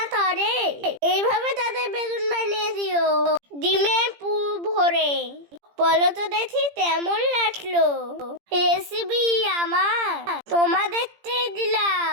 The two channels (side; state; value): left; late; 17 ms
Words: করে, এইভাবে তাদের বেগুন বানিয়ে দিও ডিমের পুর ভরে। বলো তো দেখি কেমন লাগলো রেসিপি আমার? তোমাদেরকে